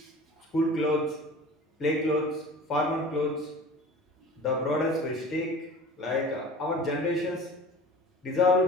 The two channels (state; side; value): normal; both; correlation 0.40